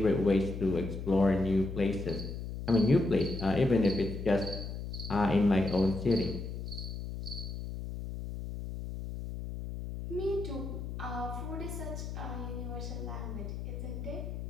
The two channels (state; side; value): noise; left; hum, 7 dB below the sound